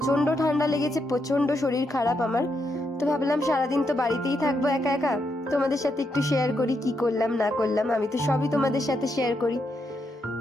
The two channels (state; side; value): normal; both; correlation 0.81